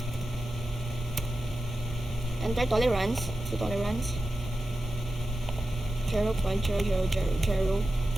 Enter tolerance. So tolerance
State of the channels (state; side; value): normal; both; correlation 0.92